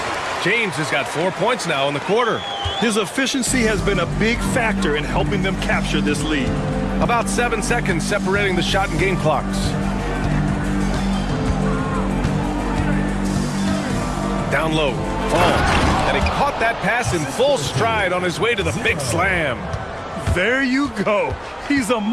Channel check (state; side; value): identical; both; correlation 1.00